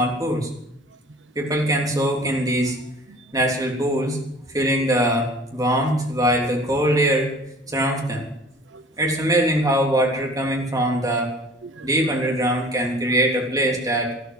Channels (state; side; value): normal; both; correlation 0.47